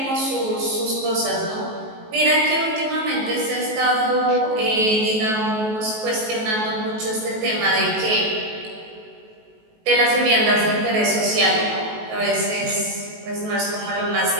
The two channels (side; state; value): left; late; 19 ms